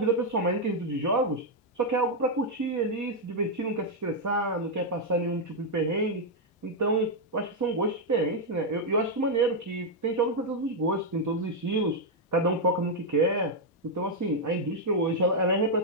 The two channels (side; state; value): both; normal; correlation -0.01